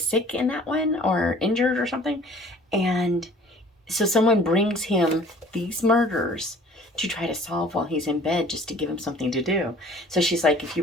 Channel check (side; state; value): both; normal; correlation 0.50